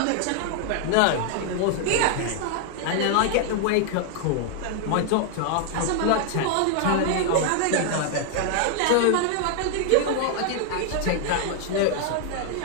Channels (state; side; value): different; both; correlation 0.00